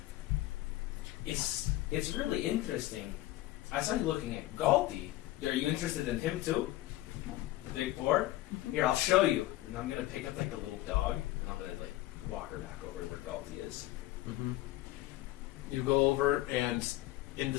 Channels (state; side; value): quieter; right; 16.6 dB